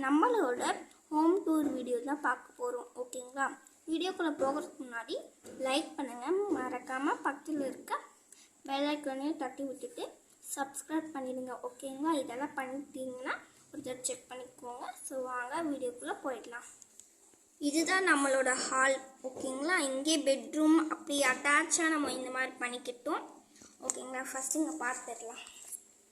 நம்மளோட ஹோம் டூர் வீடியோ தான் பார்க்க போகிறோம். ஓகேங்களா? வீடியோக்குள்ளே போகிறதுக்கு முன்னாடி லைக் பண்ணுங்கள், மறக்காமல் பக்கத்தில் இருக்க பெல் ஐக்கானையும் தட்டி விட்டுட்டு சப்ஸ்கிரைப் பண்ணிடுங்க. ஓகேங்களா? இதெல்லாம் பண்ணிட்டீங்கன்னா ஒரு தடவை செக் பண்ணிக்கோங்க. ஸோ வாங்க வீடியோக்குள்ளே போயிடலாம். இதுதான் நம்மளோட ஹால். ஓகேங்களா? இங்கே பெட்ரூம் அப்படி அட்டாச்சாக நம்ம இந்த மாதிரி பண்ணிக்கிட்டோம். ஓகேங்களா? ஃபஸ்ட்டு இங்கே பார்த்துடலாம்.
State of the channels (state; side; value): identical; both; correlation 1.00